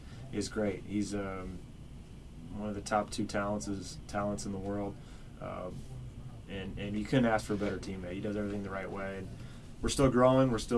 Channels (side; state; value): both; identical; correlation 1.00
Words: is great. He's one of the top 2 talents in the world. And you couldn't ask for a better teammate. He does everything the right way. And we're still growing, we're